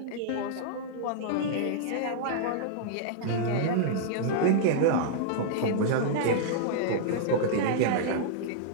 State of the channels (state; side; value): different; both; correlation -0.02